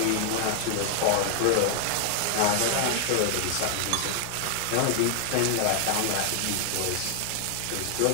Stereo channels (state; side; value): different; both; correlation 0.00